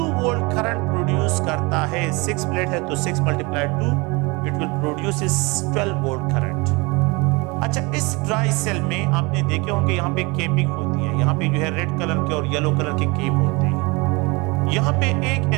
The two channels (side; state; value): left; quieter; 26.6 dB